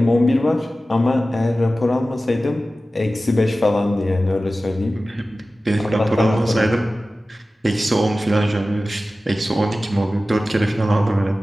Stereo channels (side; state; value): both; normal; correlation 0.95